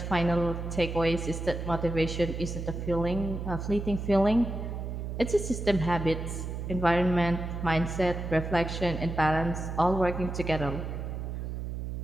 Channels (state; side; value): noise; right; hum, 5 dB below the sound